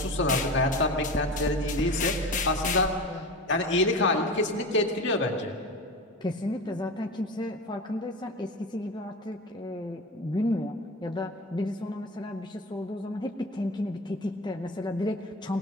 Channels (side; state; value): both; normal; correlation 0.29